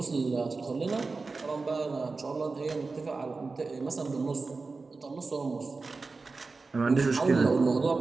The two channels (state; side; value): quieter; left; 4.0 dB